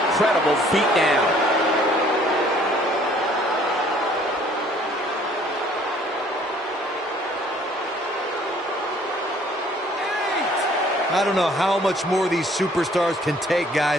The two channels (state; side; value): normal; both; correlation 0.58